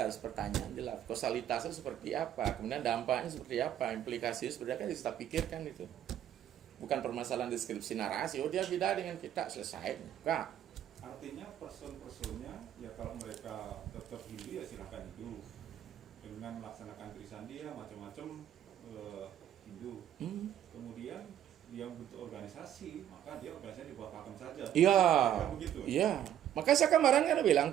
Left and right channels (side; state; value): left; quieter; 10.9 dB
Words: harus pertanyaan jelas. Kausalitasnya seperti apa, kemudian dampaknya seperti apa, implikasinya seperti apa kan kita pikirkan itu. Bukan permasalahan deskripsi narasi, oh dia beda dengan kita, selesai. Enggak. Artinya person-personnya ya kalau mereka tetap Hindu ya silahkan Hindu dengan melaksanakan Trisandia macam-macam Hindu. Kemudian dia bentuk organisasi, maka dia organisasi di bawah Pakem saja. Iya. Kan begitu. Iya. Maka saya kemarin kan bilang